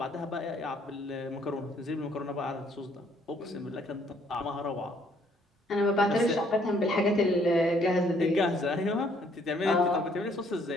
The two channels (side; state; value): both; normal; correlation 0.65